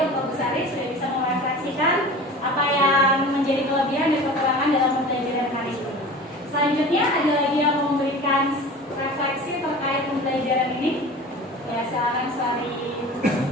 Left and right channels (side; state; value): both; normal; correlation 0.37